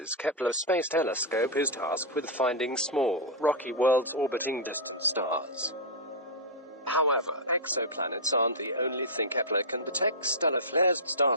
Kepler Space Telescope is tasked with finding small, rocky worlds orbiting distant stars. However, exoplanets aren't the only thing Kepler can detect. Stellar flares, star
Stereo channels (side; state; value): both; normal; correlation -0.08